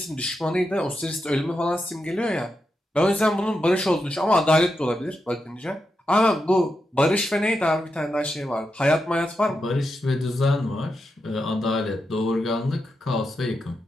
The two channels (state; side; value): normal; both; correlation 0.87